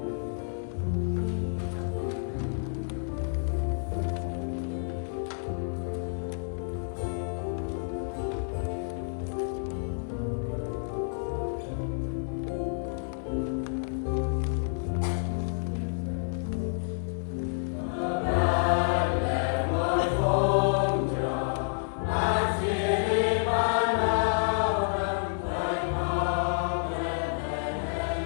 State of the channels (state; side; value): silent; right; digital silence